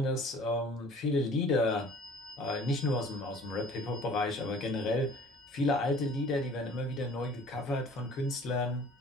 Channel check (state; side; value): normal; both; correlation 0.50